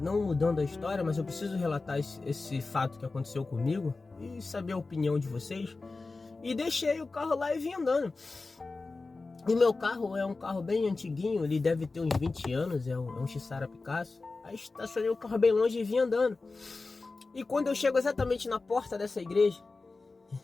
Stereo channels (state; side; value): quieter; right; 3.7 dB